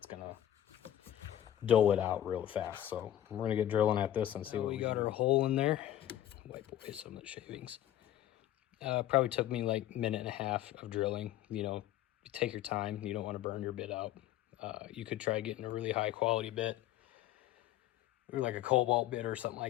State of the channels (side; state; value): right; quieter; 12.4 dB